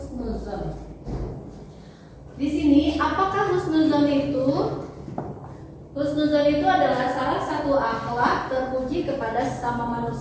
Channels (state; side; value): identical; both; correlation 1.00